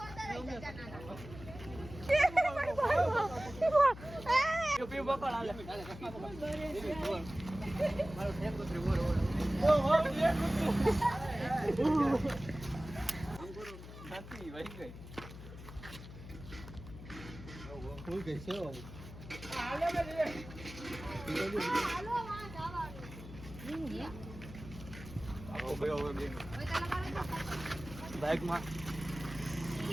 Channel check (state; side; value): noise; left; hum, 13 dB below the sound